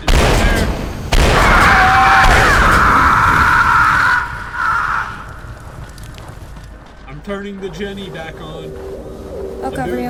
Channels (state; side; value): identical; both; correlation 1.00